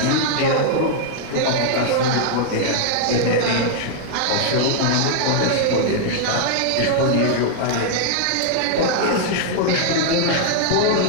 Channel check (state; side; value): different; both; correlation -0.01